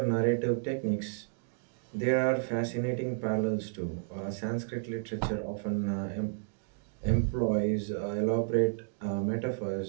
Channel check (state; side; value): silent; left; digital silence